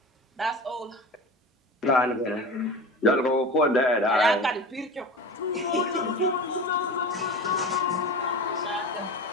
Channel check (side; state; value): both; normal; correlation 0.32